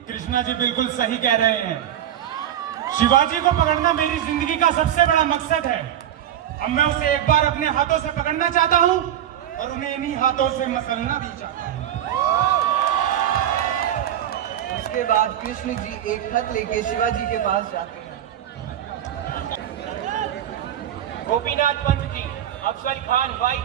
कृष्णा जी बिल्कुल सही कह रहे हैं। शिवाजी को पकड़ना मेरी जिंदगी का सबसे बड़ा मकसद है। अब मैं उसे एक बार अपने हाथों से पकड़ना चाहता हूँ और उन्हें इन्हीं हाथों से मसलना भी चाहता हूँ। उसके बाद कृष्ण जी एक खत लेके शिवाजी के पास जाते हैं। गोपीनाथ पंत जी, अफजल खान वाई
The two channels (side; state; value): left; quieter; 11.0 dB